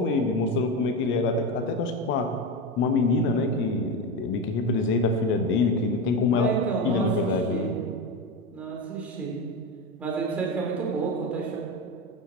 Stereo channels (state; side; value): normal; both; correlation 0.18